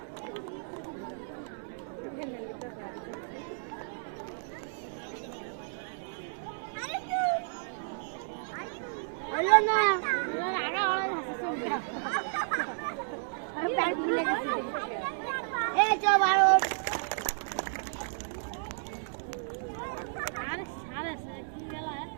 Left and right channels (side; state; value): left; silent; digital silence